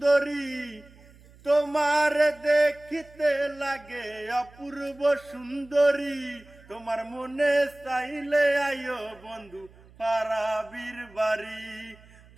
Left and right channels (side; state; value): right; noise; hum, 25 dB below the sound